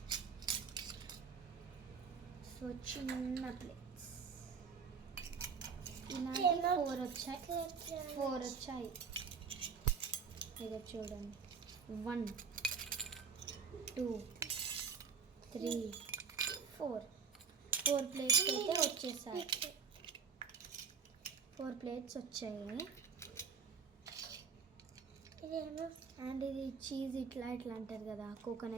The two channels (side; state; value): left; quieter; 5.8 dB